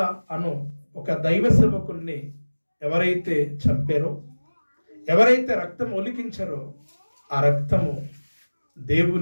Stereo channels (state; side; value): inverted; both; correlation -1.00